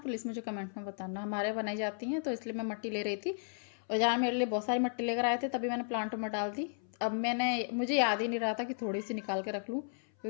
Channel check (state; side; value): silent; right; 55 dB below the other